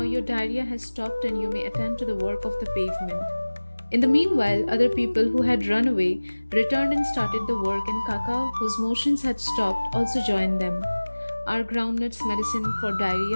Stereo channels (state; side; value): inverted; both; correlation -1.00